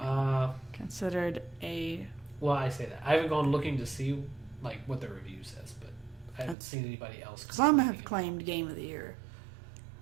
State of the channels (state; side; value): drops out; left; at 6.6 s